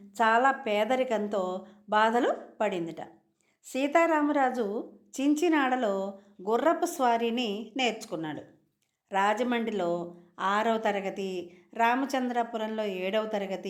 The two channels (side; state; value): both; identical; correlation 1.00